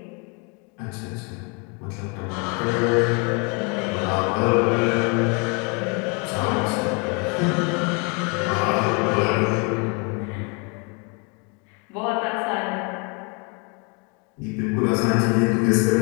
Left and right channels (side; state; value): right; quieter; 33.4 dB